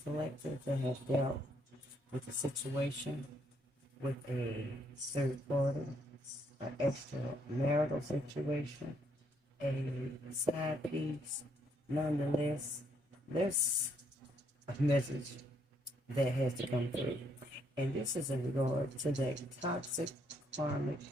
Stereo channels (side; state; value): both; normal; correlation 0.71